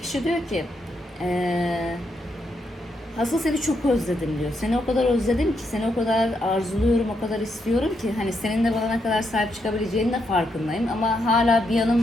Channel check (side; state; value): both; normal; correlation 0.79